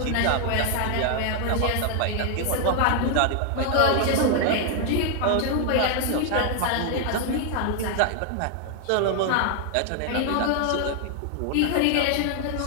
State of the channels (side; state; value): both; different; correlation 0.00